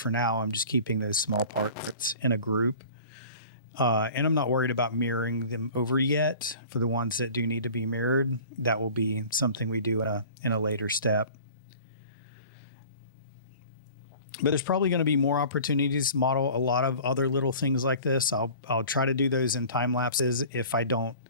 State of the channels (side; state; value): both; inverted; correlation -0.44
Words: now I'm just keeping those small parts in a group. And I'm not worried about mirroring them over yet. For the ones that do need to be mirrored, that will be something we do in a later step. But there's probably going to be more opportunities to model a lot of other little things like this. I'll try to do those in time lapses if